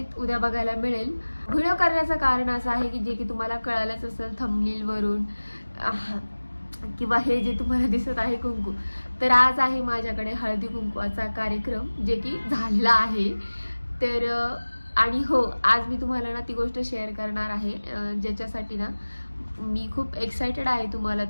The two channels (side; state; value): both; inverted; correlation -1.00